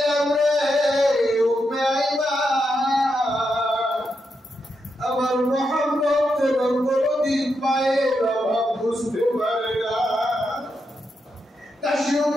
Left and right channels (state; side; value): normal; both; correlation 0.84